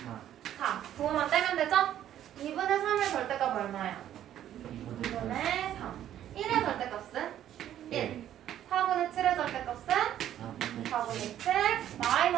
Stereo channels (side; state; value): left; quieter; 11.3 dB